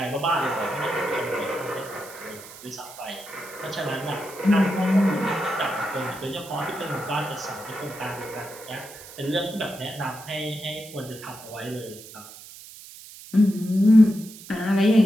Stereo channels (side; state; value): right; noise; hiss, 17 dB below the sound